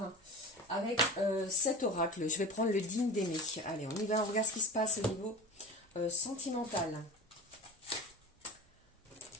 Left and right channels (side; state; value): both; normal; correlation 0.33